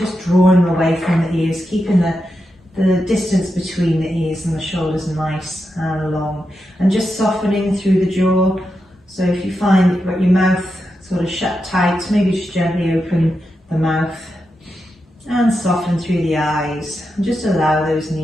drawing them away from the ears, keeping the distance between the ears and the shoulders nice and long, and just softening through the jaw. So if you find that you've got your mouth sort of shut tight, maybe just gently open the mouth and soften through the eyes, and just allow those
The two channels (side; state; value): both; normal; correlation 0.87